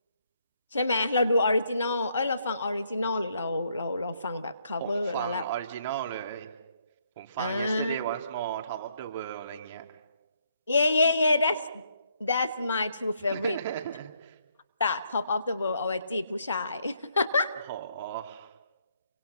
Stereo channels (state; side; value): inverted; both; correlation -0.72